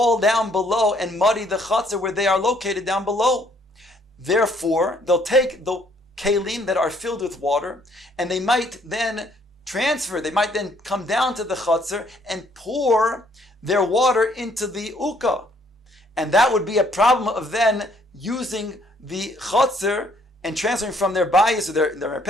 down below and muddy the chatzir where they are located down below. Therefore, they'll take the kelim that are filled with water, and they might then come down to the chatzir and pour their water into the uka. And that would be a problem of then using the chatzir and transferring from their bayis or their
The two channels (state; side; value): normal; both; correlation 0.65